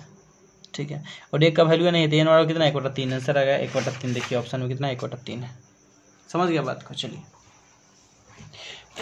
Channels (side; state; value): both; identical; correlation 1.00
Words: ठीक है और 1 का वैल्यू नहीं है तो n वाला कितना 1/3 आंसर आ गया 1/3। देखिए ऑप्शन में कितना 1/3 है, समझ गया बात को। चलिए